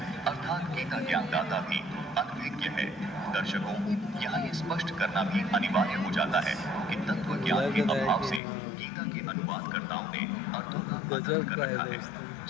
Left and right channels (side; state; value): right; drops out; at 8.4 s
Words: अर्थात गीता ज्ञानदाता भी अनभिज्ञ है। दर्शकों, यहाँ ये स्पष्ट करना भी अनिवार्य हो जाता है कि तत्व ज्ञान के अभाव से गीता के अनुवादकर्ताओं ने अर्थों का अनर्थ कर रखा है।